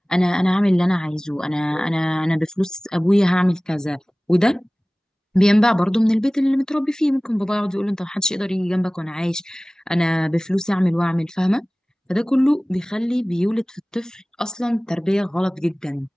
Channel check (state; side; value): normal; both; correlation 0.98